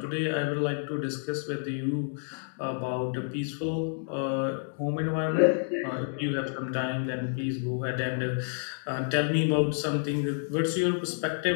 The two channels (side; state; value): right; silent; digital silence